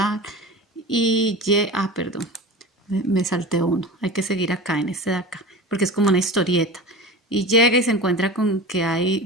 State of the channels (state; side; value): normal; both; correlation 0.33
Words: perdón, me salté uno, hay que seguir acá en este de acá, porque es como una historieta. Y llega y se encuentra con que